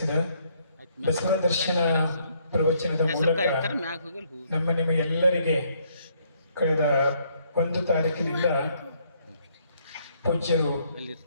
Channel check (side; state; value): both; inverted; correlation -0.68